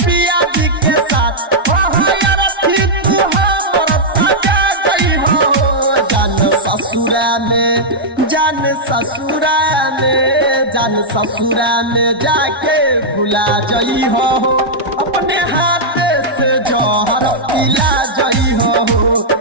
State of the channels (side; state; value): both; normal; correlation -0.07